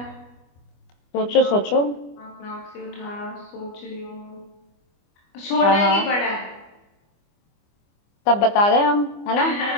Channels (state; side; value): late; right; 25 ms